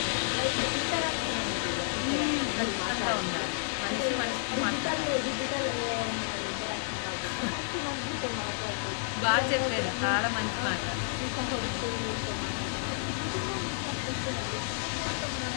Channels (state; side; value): silent; right; digital silence